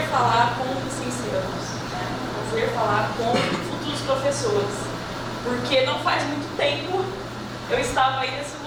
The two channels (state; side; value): identical; both; correlation 1.00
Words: falar com licenciados, né? É um prazer falar com futuros professores, porque não faz muito tempo eu estava aí nesse